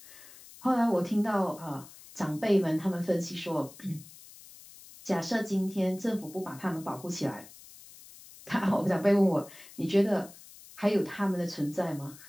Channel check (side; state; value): left; noise; hiss, 20 dB below the sound